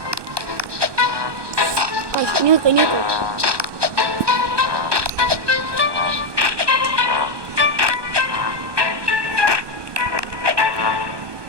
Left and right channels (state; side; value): late; left; 1.2 ms